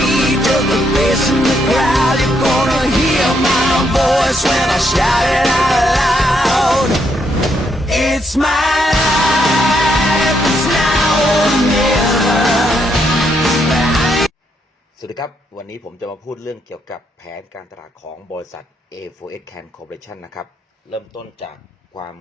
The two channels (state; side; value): normal; both; correlation 0.76